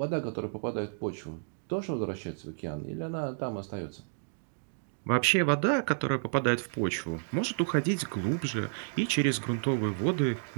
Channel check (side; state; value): left; silent; digital silence